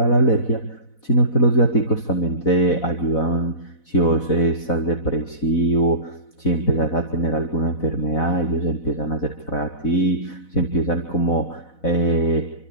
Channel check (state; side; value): late; right; 4.0 ms